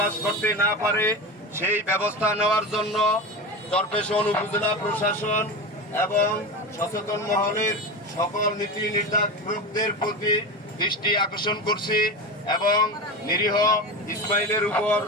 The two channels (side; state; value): both; normal; correlation 0.23